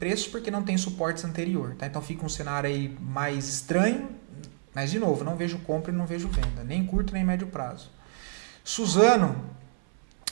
porque não tem suportes anterior, tá? Então fica um cenário aí mais estranho, mas de novo, não vejo compra e não vejo venda, nem curto nem médio prazo. Suzano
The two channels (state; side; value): silent; left; 57 dB below the other